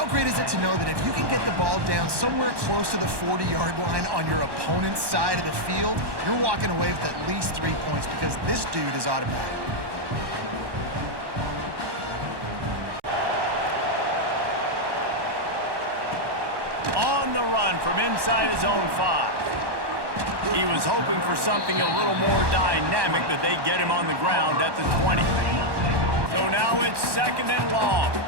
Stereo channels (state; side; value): late; left; 1.1 ms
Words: great is it to know that if you can get the ball down somewhere close to the 40-yard line on your opponent's side of the field, you're walking away with at least 3 points because this dude is automatic. On the run from inside his own 5. He was hoping for something a little more dynamic, but they get him on the ground at the 20. So now it's 2nd and long.